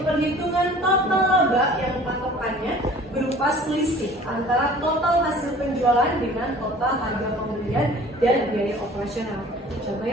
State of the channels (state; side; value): normal; both; correlation 0.47